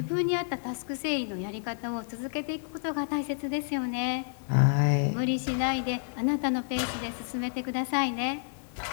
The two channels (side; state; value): right; silent; digital silence